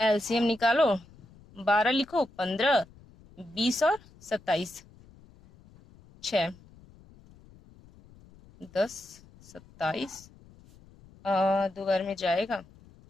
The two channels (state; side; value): noise; left; rumble, 25 dB below the sound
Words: निकालो, 12 लिखो, 15, 20 और 27, 6, 10, 27, 2 बार में जाएगा